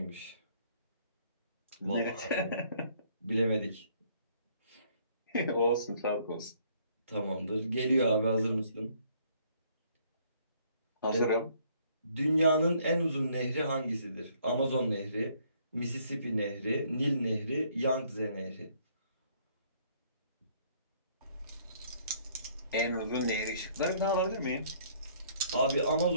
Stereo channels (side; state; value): both; inverted; correlation -0.64